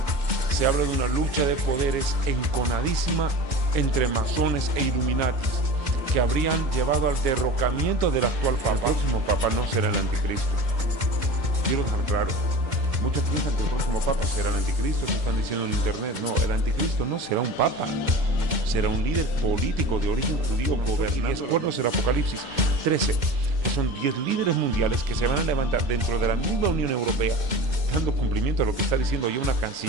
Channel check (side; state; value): left; late; 2.1 ms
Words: se habla de una lucha de poderes enconadísima entre masones e illuminatis que habrían llevado al derrocamiento del actual papa. El próximo papa no será el anticristo. Quiero dejar claro, muchos piensan que el próximo papa será el anticristo, eso están diciendo en internet. No, el anticristo no será un papa, será un líder político de origen judío gobernante. Y 10 cuernos del Apocalipsis 13, que son 10 líderes mundiales que se van a levantar dentro de la misma Unión Europea, dando cumplimiento a lo que está diciendo ya una